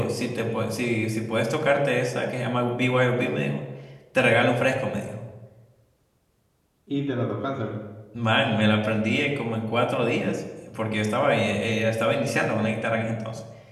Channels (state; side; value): identical; both; correlation 1.00